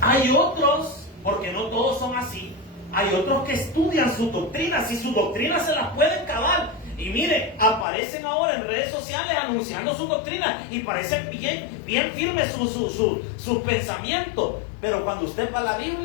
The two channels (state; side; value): drops out; right; at 7.9 s